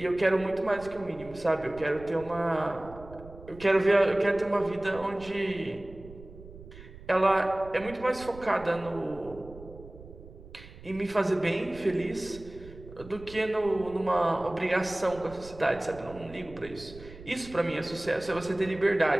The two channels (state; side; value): noise; right; rumble, 17 dB below the sound